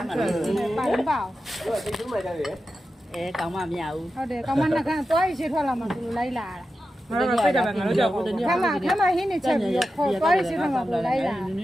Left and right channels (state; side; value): normal; both; correlation 0.91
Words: ် ပါရင်ပါ တော့တိတ်ထူးမှကြတယ် အဲကောင်းမှမရဘူး ဟုတ်တယ်ကောင်မနှကန်းသွားရရှိထွက်လာမှသူလိုက်လာတာ ငါတို့စိတ်တယ်ငါတို့ကြောက်ဘူး ခမဟင်းနေချက်ပြီးတော့ခေါ်သွားရရှိထွက်လာမှလိုက်လာ